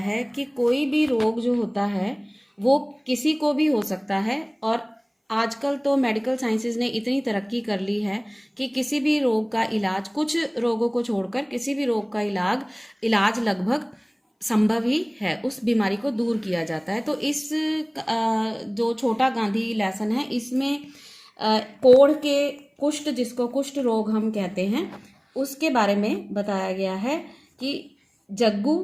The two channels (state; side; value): identical; both; correlation 1.00